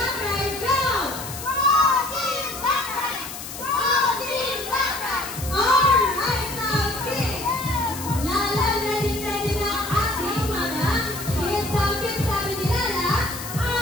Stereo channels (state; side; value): noise; left; hiss, 10 dB below the sound